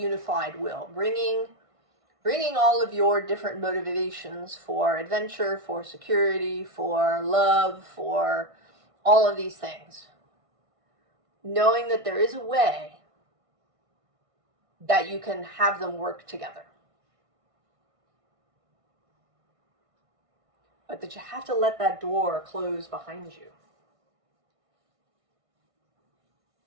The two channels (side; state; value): left; late; 1.6 ms